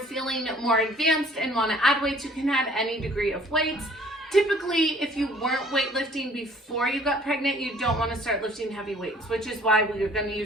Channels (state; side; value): normal; both; correlation 0.55